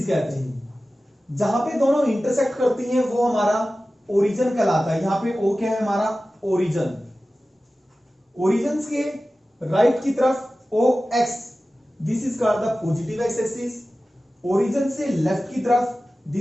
कहते हैं। जहां पे दोनों इंटरसेक्ट करती हैं वो हमारा ओरिजिन कहलाता है। यहां पे ओ क्या है, हमारा ओरिजिन। ओरिजिन के राइट की तरफ O X, this is called the positive x axis. Origin से लेफ्ट की तरफ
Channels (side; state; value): both; normal; correlation 0.95